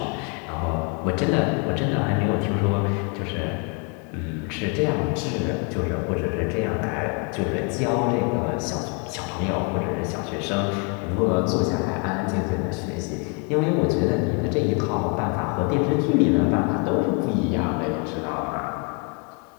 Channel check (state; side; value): quieter; right; 36.1 dB